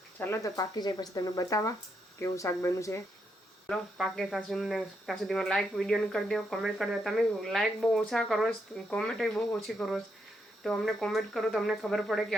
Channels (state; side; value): normal; both; correlation 0.79